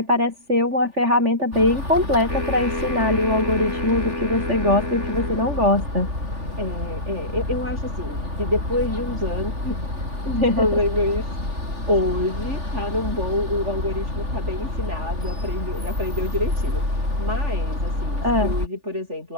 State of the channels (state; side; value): late; left; 3.4 ms